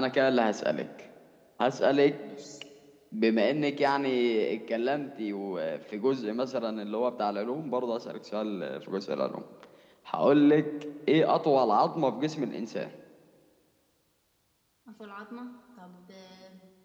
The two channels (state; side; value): identical; both; correlation 1.00